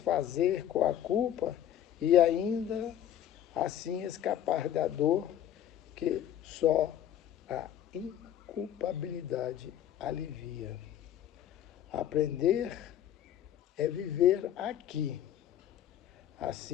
com a culpa e ainda assim escapar da dor que só a inculpabilidade alivia. Aprender é viver aqui,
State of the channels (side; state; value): right; quieter; 10.9 dB